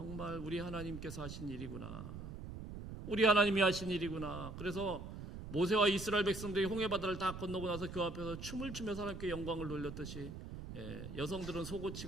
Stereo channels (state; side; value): noise; right; rumble, 9 dB below the sound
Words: 우리 하나님께서 하신 일이구나. 우리 하나님이 하신 일이구나. 그래서 모세와 이스라엘 백성들이 홍해바다를 다 건너고 나서 그 앞에서 춤을 추면서 하나님께 영광을 돌렸듯이, 여성들은